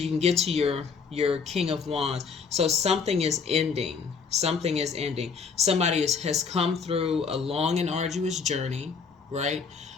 can get to your King of Wands. So something is ending. Something is ending. Somebody has come through a long and arduous journey, right?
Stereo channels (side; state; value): right; quieter; 5.5 dB